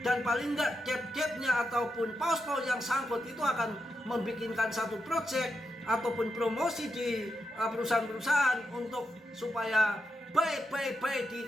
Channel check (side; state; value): both; normal; correlation 0.85